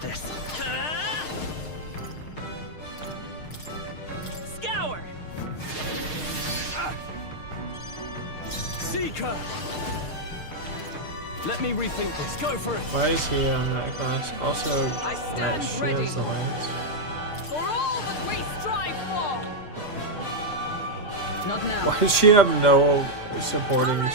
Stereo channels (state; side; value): late; right; 6.5 ms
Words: this. Scour! Seeker! Let me rethink this. Go for it! Why is he on that class? Also, I stand that ready. shields the lance. For all that we strive for! Not now. Why does she have no supporting